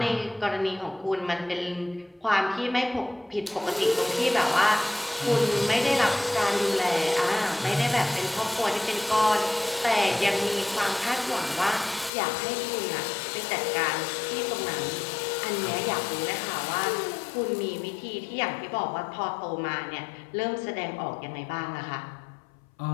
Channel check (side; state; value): right; drops out; at 12.1 s